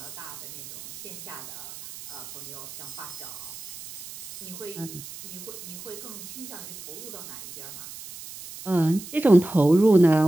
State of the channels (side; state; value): right; noise; hiss, 13 dB below the sound